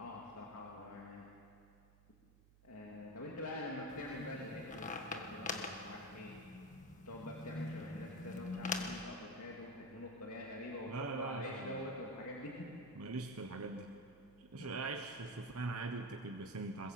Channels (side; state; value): right; noise; hum, 24 dB below the sound